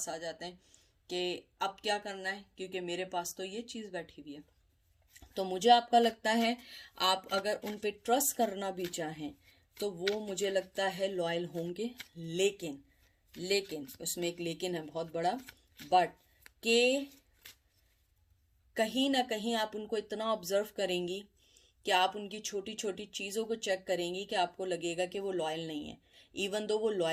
आ जाते हैं कि अब क्या करना है क्योंकि मेरे पास तो ये चीज़ बैठी हुई है। तो मुझे आपका लगता है आप अगर उन पे ट्रस्ट करना भी चाहें तो वो मुझे लगता है लॉयल होंगे, लेकिन लेकिन उसमें एक लेकिन है बहुत बड़ा, बट के कहीं ना कहीं आप उनको इतना ऑब्जर्व करेंगी कि आप उनकी छोटी छोटी चीज़ों को चेक करेंगी कि आपको लगेगा कि वो लॉयल नहीं है, इवन दो वो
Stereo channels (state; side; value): identical; both; correlation 1.00